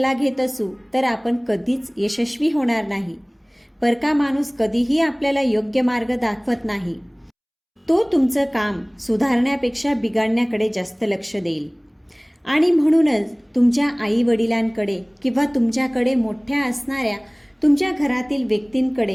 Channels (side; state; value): both; identical; correlation 1.00